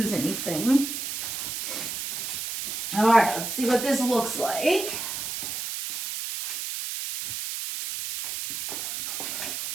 anything. All right, let's see what this looks like.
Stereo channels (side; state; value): right; noise; hiss, 4 dB below the sound